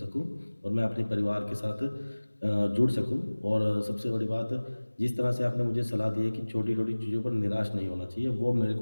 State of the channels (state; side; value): inverted; both; correlation -1.00